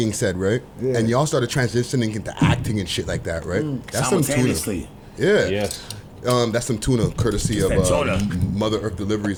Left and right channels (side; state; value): both; identical; correlation 1.00